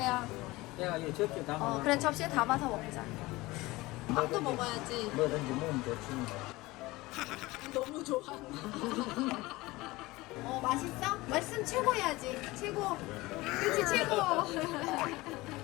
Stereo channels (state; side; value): quieter; right; 20.4 dB